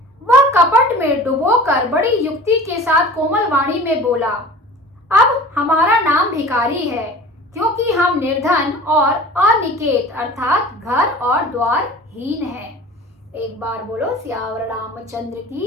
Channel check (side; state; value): both; normal; correlation 0.41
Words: वह कपट में डुबोकर बड़ी युक्ति के साथ कोमल वाणी में बोला, अब हमारा नाम भिखारी है, क्योंकि हम निर्धन और अनिकेत अर्थात घर और द्वार हीन हैं। एक बार बोलो सियावर रामचंद्र